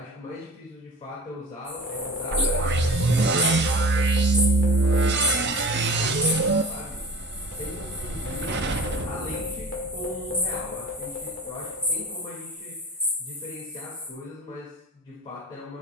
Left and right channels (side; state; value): both; normal; correlation 0.38